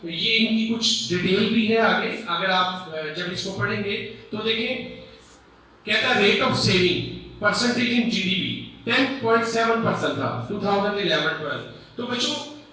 ये इनकी कुछ डिटेल भी है आगे, अगर आप जब इसको पढ़ेंगे तो देखें, कहता है rate of saving percentage in GDP 10.7% था 2011-12। तो बच्चों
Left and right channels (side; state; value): both; identical; correlation 1.00